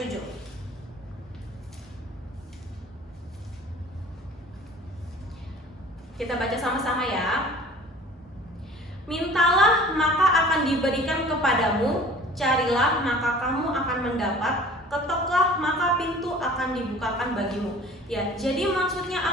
Kita baca sama-sama ya. Mintalah maka akan diberikan kepadamu, carilah maka kamu akan mendapat, ketoklah maka pintu akan dibukakan bagimu. Ya, jadi maksudnya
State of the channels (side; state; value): both; normal; correlation 0.46